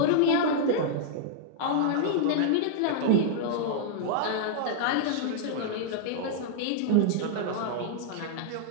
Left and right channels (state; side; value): different; both; correlation -0.01